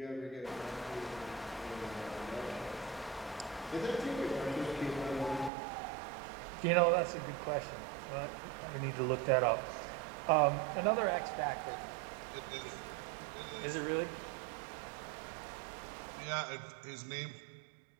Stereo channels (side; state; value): left; drops out; at 5.5 s